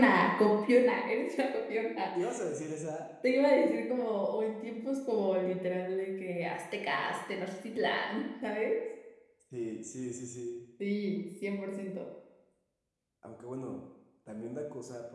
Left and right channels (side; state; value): both; identical; correlation 1.00